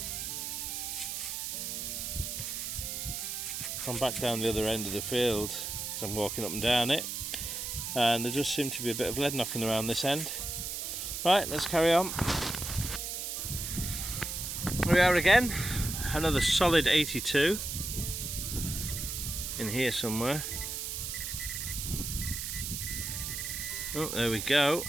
I'm back down the other end of the field as I'm walking up and down it, and there just seemed to be a bit of lead knocking around this end. Right, let's carry on. Here we are again, another solid 82 in here somewhere. Oh, there we go.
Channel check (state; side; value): noise; right; hiss, 4 dB below the sound